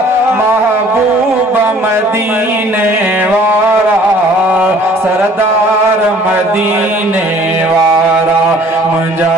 महबूब मदीने वारा सरदार मदीने वारा मुंहिंजा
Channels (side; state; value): both; normal; correlation 0.54